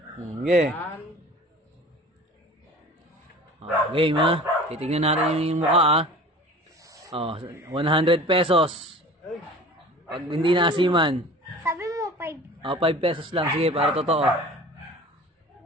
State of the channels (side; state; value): both; normal; correlation 0.42